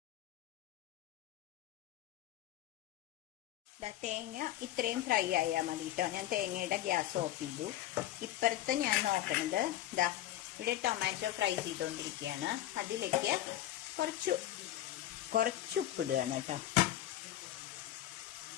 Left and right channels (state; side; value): quieter; right; 13.5 dB